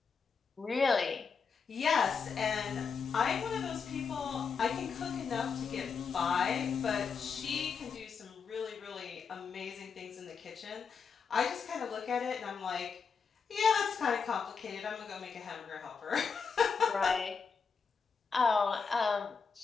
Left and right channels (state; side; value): quieter; right; 5.7 dB